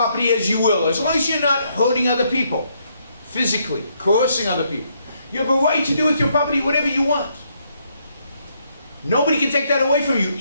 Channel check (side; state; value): both; inverted; correlation -0.73